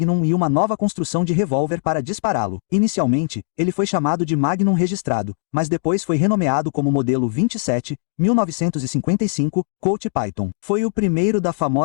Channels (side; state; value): right; silent; digital silence